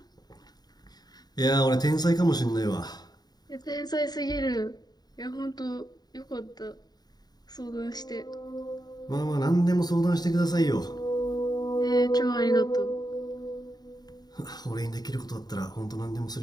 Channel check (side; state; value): right; late; 0.20 ms